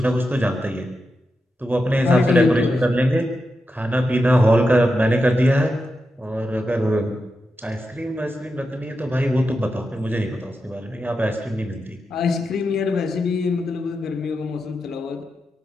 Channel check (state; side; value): normal; both; correlation 0.88